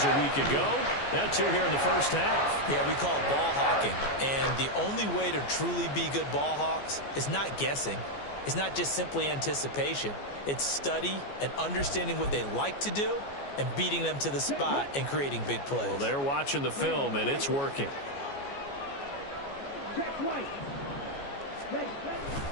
a week ago. Now 2 here in the first half. Yeah, we call it ball hawking. And the only way to truly be good ball hawks is not guessing. It's not just simply anticipation. It's study and understanding what they like to do and beating them to the spot and creating big plays. Well, they're watching the film, and it's working. Jack White. Ready.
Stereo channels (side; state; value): right; late; 14 ms